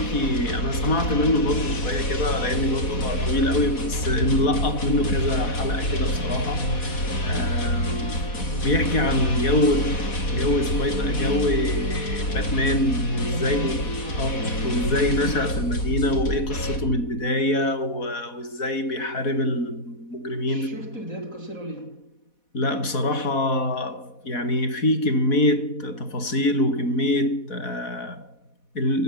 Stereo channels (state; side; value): late; right; 4.1 ms